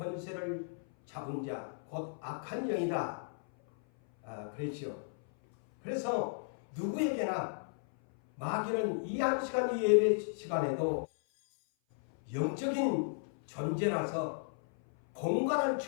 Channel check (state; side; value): silent; right; 55 dB below the other